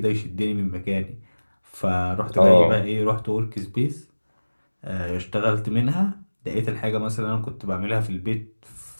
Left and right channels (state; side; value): inverted; both; correlation -1.00